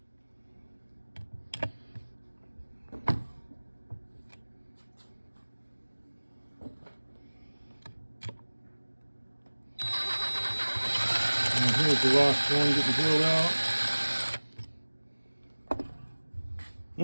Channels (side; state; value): both; inverted; correlation -1.00